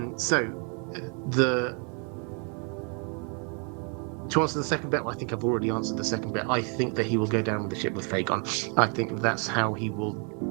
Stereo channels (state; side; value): quieter; left; 37.3 dB